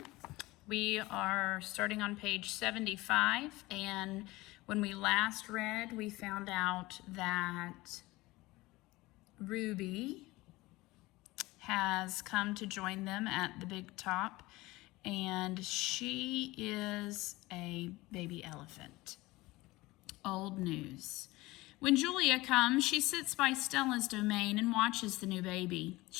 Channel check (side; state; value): right; quieter; 20.2 dB